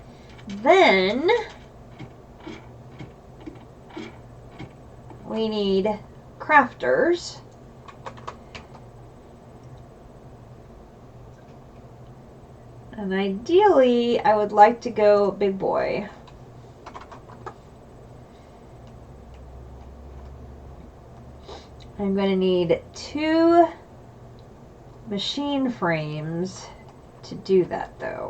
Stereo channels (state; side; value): identical; both; correlation 1.00